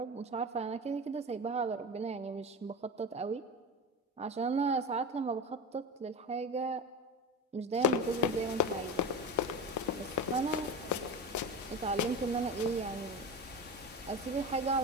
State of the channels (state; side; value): normal; both; correlation 0.24